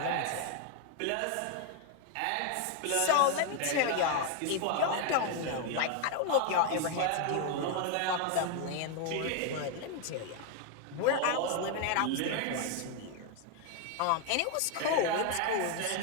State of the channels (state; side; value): different; both; correlation 0.00